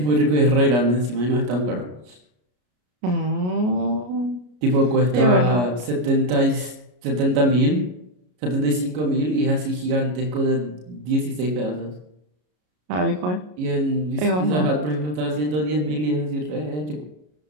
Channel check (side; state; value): left; late; 33 ms